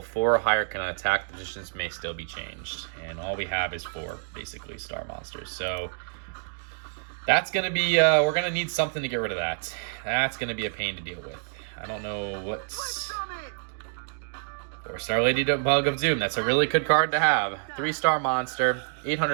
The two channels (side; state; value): left; silent; 60 dB below the other